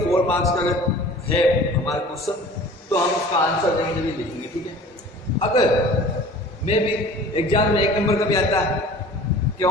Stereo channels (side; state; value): both; normal; correlation 0.45